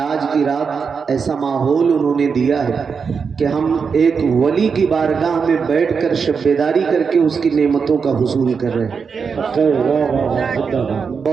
کی رات ایسا ماحول انہوں نے دیا ہے کہ ہم ایک ولی کی بارگاہ میں بیٹھ کر شب بیداری کر کے اس کی نعمتوں کا حصول کر رہے ہیں۔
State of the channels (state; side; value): quieter; left; 5.8 dB